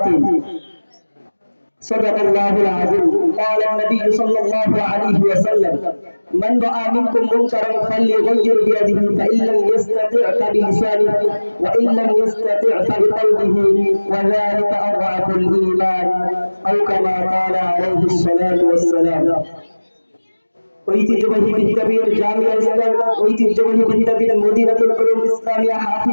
صدق الله العظيم. قال النبي صلى الله عليه وسلم: من رأى منكم منكرا فليغير بيده فإن لم يستطع فبلسانه وإن لم يستطع فبقلبه وذلك أضعف الإيمان أو كما قال عليه الصلاة والسلام. ঐতিহ্যবাহী বিদ্যাপীঠ জামিয়া ইসলাম ঐতিহ্যবাহী বিদ্যাপীঠ মদিনাতুল উলুম ইসলামিয়া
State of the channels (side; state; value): both; inverted; correlation -1.00